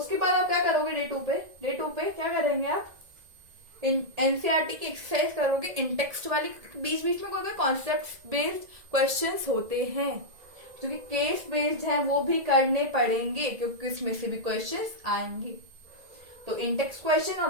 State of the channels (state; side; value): late; left; 2.0 ms